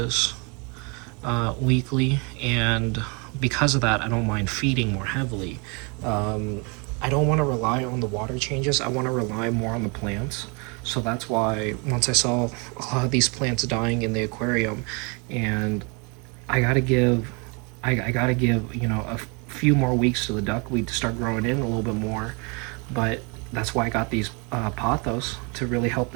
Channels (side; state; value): left; quieter; 32.2 dB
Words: weekly, and because of that I don't mind feeding more heavily. I don't want to rely on the water changes, I want to rely more on the plants. So that's why once I saw a lot of these plants dying in the aquarium, and I gotta give I gotta give, you know, a few more weeks to the duckweed to start growing in a little bit more. But that's why I got these pothos to really help